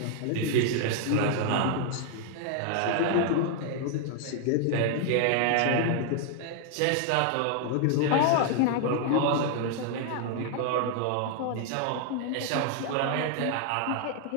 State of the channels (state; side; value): different; both; correlation 0.00